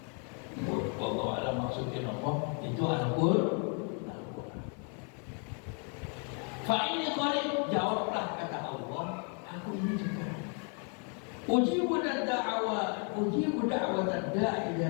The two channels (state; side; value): quieter; right; 39.7 dB